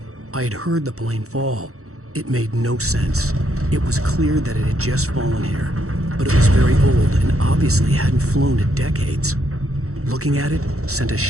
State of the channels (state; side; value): late; left; 0.64 ms